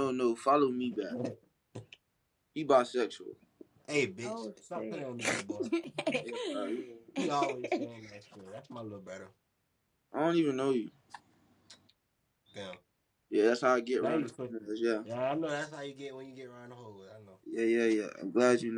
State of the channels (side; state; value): both; identical; correlation 1.00